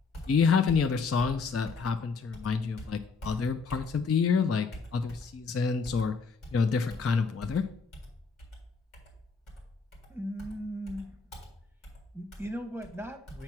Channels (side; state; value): right; quieter; 4.9 dB